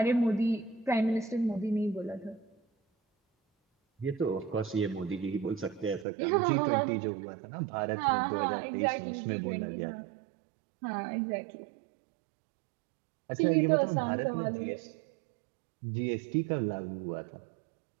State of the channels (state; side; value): drops out; left; at 6.1 s